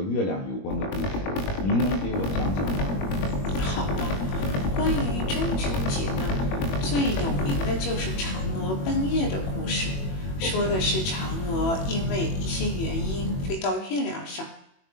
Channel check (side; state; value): right; late; 21 ms